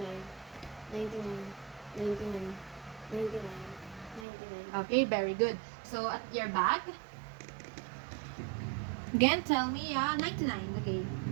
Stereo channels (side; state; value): left; drops out; at 4.2 s